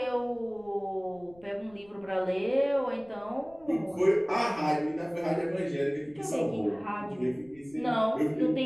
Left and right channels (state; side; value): noise; left; rumble, 27 dB below the sound